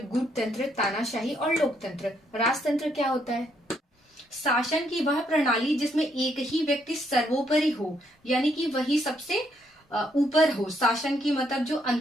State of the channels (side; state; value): both; normal; correlation 0.73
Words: गुटतंत्र, तानाशाही और लोकतंत्र। राजतंत्र क्या होता है? शासन की वह प्रणाली जिसमें एक ही व्यक्ति सर्वोपरि हो, यानी कि वही सबसे ऊपर हो। शासन की मतलब जो